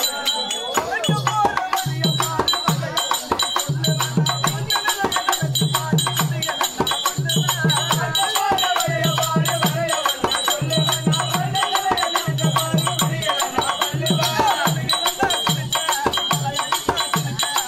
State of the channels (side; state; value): both; identical; correlation 1.00